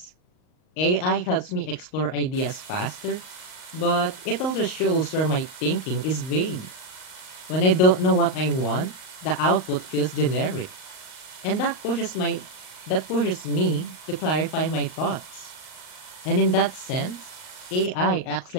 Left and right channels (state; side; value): late; right; 39 ms